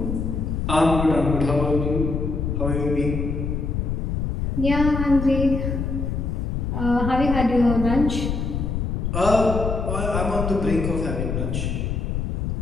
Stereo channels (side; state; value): left; noise; rumble, 1 dB below the sound